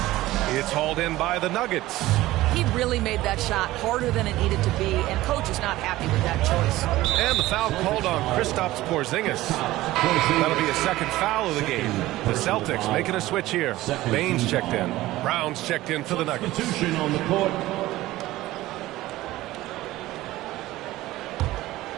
It's hauled in by the Nuggets. He really made that shot harder than it needed to be, and coach is not happy with that choice. And the foul called on Kristaps Porzingis. That'll be a second foul of the game. The Celtics making a switch here. Baines checked in. Brown's checked in for the Nuggets. Substitution on the court.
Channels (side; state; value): left; quieter; 16.9 dB